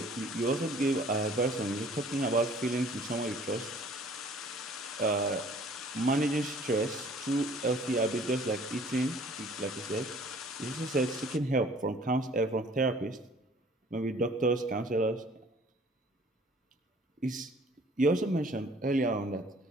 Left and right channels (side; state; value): both; normal; correlation 0.54